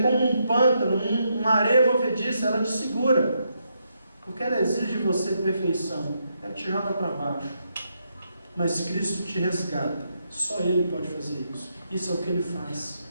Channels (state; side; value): inverted; both; correlation -0.80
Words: como um pântano, uma areia movediça, ela te segura. Porque ela exige de você perfeição. Ela te joga para baixo. Mas Cristo te resgata. Só Ele pode fazer isso. Isso é o que Ele faz.